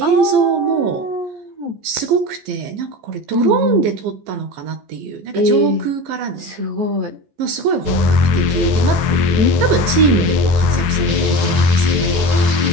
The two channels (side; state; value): left; late; 15 ms